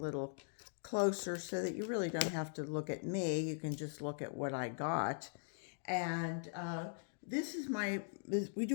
closer so that you really don't have to look at me. You can just look at what I got. And this is we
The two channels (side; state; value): right; silent; digital silence